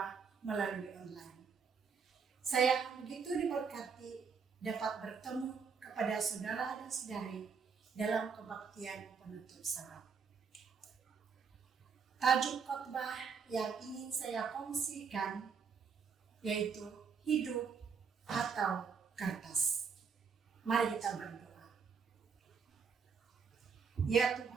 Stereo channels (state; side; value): quieter; left; 5.9 dB